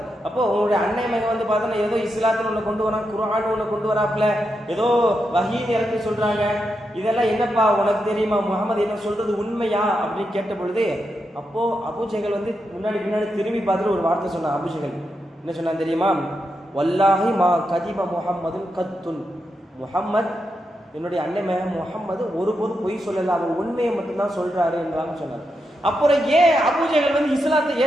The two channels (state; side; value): normal; both; correlation 0.85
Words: அப்போ உங்களுடைய அன்னை மகன் பார்த்தோன்னா ஏதோ இஸ்லாத்தில் ஒன்று கொண்டு வரான், குர்ஆன் ஒன்று கொண்டு வராப்புல, ஏதோ வஹீன்னு இறக்கி சொல்றாங்க, இதெல்லாம் என்னப்பா உனக்கு தெரியுமா, முகமது என்ன சொல்றது உண்மையா அப்படின்னு கேட்ட பொழுது, அப்போ அபூஜஹல் முன்னாடி திரும்பி பார்த்துட்டு ஒரு வார்த்தை சொன்னான். அபூஜஹல் என்ன சொன்னான் தெரியுமா? வல்லாஹி மா கதிப முஹம்மதுன் கத்துன், முஹம்மத் என்னுடைய அன்னை மகன் முஹம்மது ஒருபோதும் பொய் சொல்லல, அவர் உண்மையை மட்டும்தான் சொல்றாரு என்றாங்க சொன்னார். அப்புறம் ஏன் அபூஜஹல் இஸ்லாத்தை